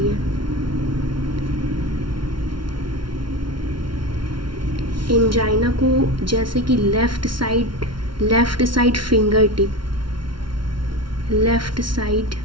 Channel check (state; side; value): late; left; 0.73 ms